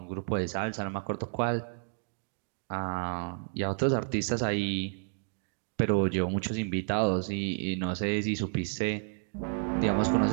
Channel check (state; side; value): silent; left; 57 dB below the other